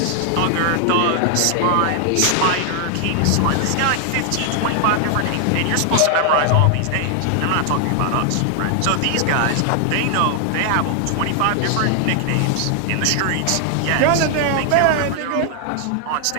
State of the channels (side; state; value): both; different; correlation 0.00